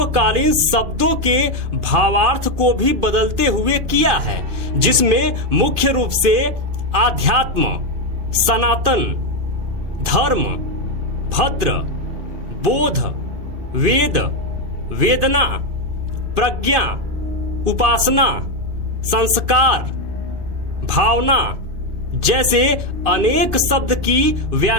शब्दों के भावार्थ को भी बदलते हुए किया है, जिसमें मुख्य रूप से आध्यात्म, सनातन, धर्म, भद्र, बोध, वेद, वेदना, प्रज्ञा, उपासना, संस्कार, भावना जैसे अनेक शब्द की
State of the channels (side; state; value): left; late; 2.5 ms